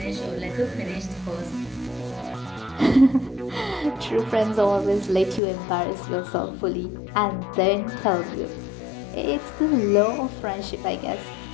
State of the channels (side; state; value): right; drops out; at 5.4 s